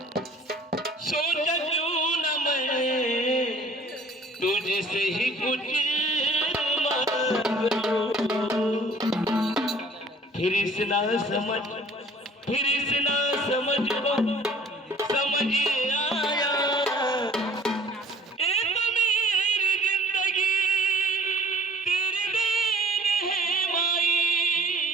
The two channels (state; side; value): normal; both; correlation 0.52